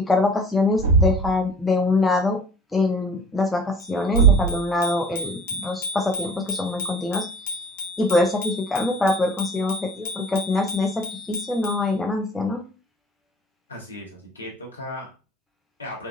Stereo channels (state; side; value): normal; both; correlation 0.46